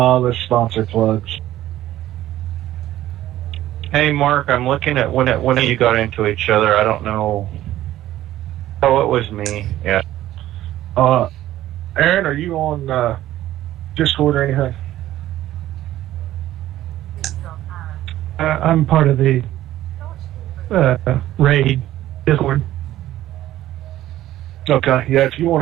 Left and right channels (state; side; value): quieter; left; 14.0 dB